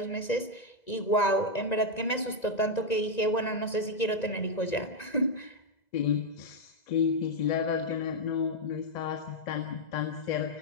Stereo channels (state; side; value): late; right; 2.0 ms